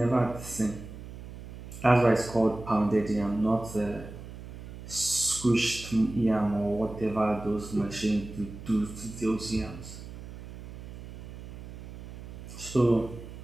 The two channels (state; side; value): noise; right; hum, 13 dB below the sound